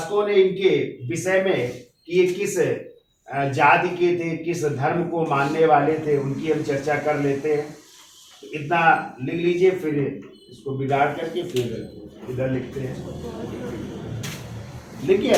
ने इनके विषय में कि ये किस जाति के थे, किस धर्म को मानने वाले थे, उनकी हम चर्चा कर लेते हैं। इतना लिख लीजिए, फिर इसको बिगाड़ करके फिर इधर लिखते हैं। लिखिए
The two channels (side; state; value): both; identical; correlation 1.00